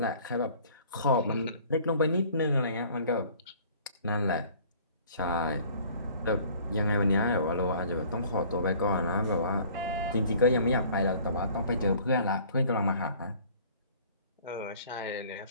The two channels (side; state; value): both; inverted; correlation -0.52